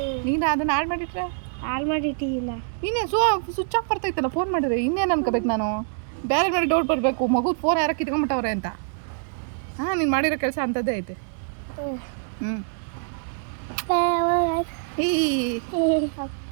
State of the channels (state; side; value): silent; left; digital silence